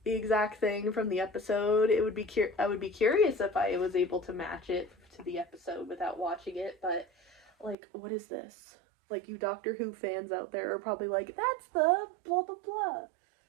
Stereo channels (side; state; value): left; drops out; at 7.8 s